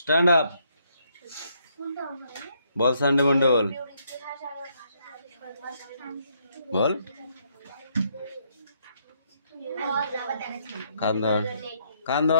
আপ বল। সানডে মানডে বল, বল। কান ধর, কান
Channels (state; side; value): inverted; both; correlation -0.72